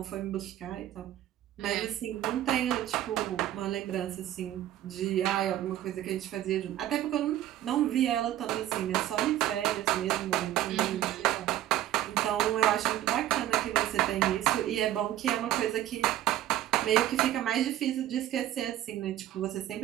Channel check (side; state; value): left; quieter; 13.1 dB